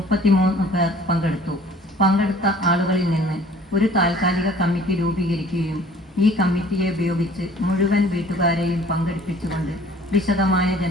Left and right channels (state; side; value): normal; both; correlation 0.52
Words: പേർ പങ്കെടുത്ത ആളുകളിൽ നിന്ന് ഒരു താൽക്കാലിക കമ്മിറ്റി രൂപീകരിക്കുകയും ഈ കമ്മിറ്റിയെ ഉപയോഗിച്ച് മുഴുവൻ വീട്ടുകാരെയും പങ്കെടുപ്പിച്ചുകൊണ്ട് വിശദമായ